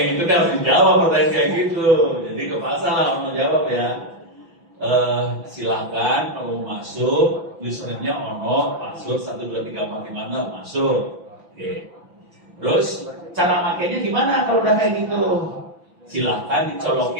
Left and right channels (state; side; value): late; left; 5.9 ms